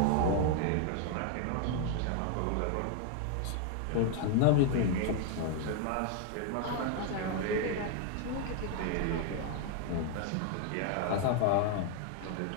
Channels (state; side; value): different; both; correlation 0.00